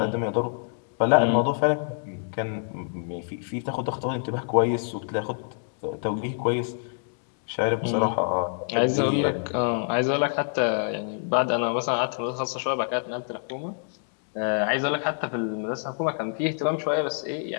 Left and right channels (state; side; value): silent; right; 60 dB below the other